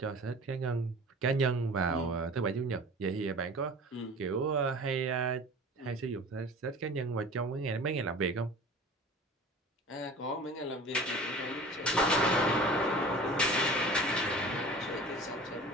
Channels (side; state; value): both; normal; correlation 0.41